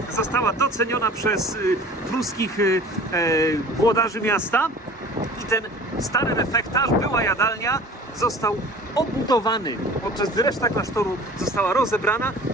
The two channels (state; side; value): normal; both; correlation 0.43